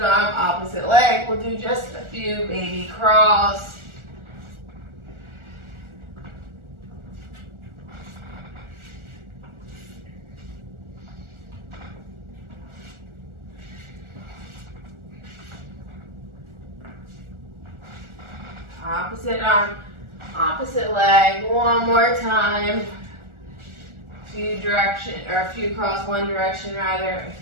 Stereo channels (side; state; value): left; late; 1.4 ms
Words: arm, opposite leg. We'll do just a few baby crawls. Opposite arm, opposite leg. One more time. A few crawls one direction rather, a